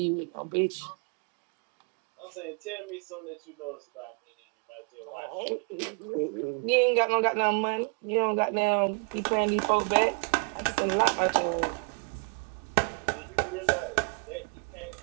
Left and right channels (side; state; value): left; quieter; 36.1 dB